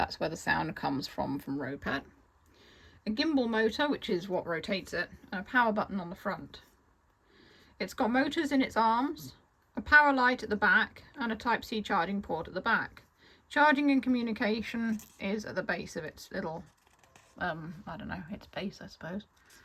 where the sound comes from Ropet. A gimbal motor, which is what rotates it, and a power button on the front. It's got motors in its arms, a power light at the back, and a Type-C charging port at the back. Charging and communication is at the base of its little, I don't know, its base, I suppose.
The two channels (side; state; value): both; identical; correlation 1.00